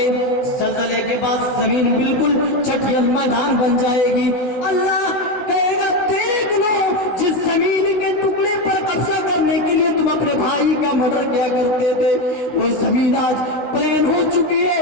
زلزلے کے بعد زمین بالکل چٹیل میدان بن جائے گی۔ اللہ کہے گا دیکھ لو، جس زمین کے ٹکڑے پر قبضہ کرنے کے لیے تم اپنے بھائی کا مرڈر کیا کرتے تھے، وہ زمین آج پلین ہو چکی ہے،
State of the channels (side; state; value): right; late; 16 ms